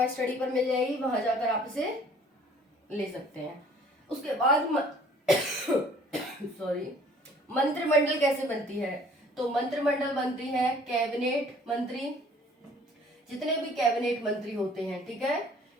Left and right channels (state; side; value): normal; both; correlation 0.55